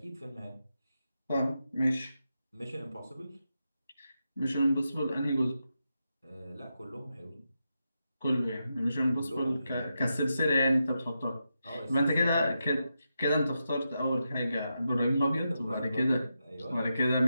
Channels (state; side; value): inverted; both; correlation -0.87